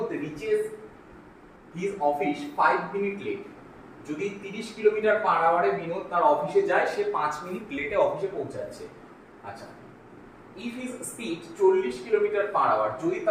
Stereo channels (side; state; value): both; identical; correlation 1.00